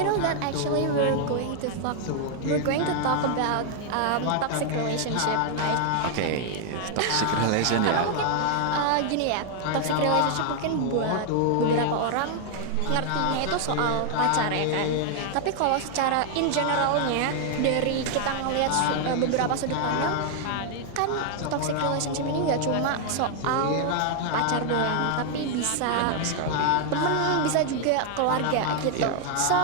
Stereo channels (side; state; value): both; different; correlation 0.00